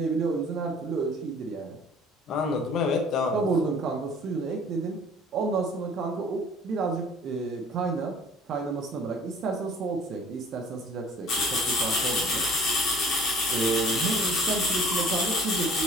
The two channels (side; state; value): both; normal; correlation 0.51